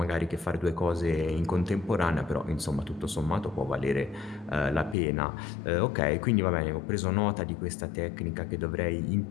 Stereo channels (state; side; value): drops out; right; at 5.0 s